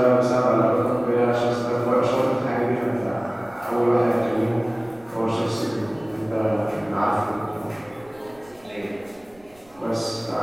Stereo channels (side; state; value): right; noise; rumble, 29 dB below the sound